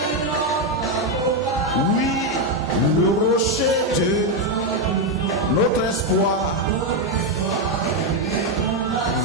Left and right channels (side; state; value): both; normal; correlation 0.04